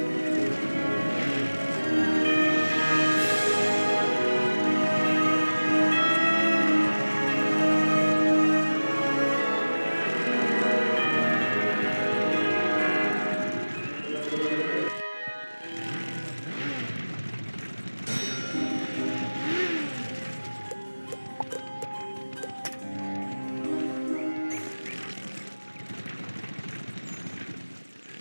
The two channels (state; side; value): inverted; both; correlation -1.00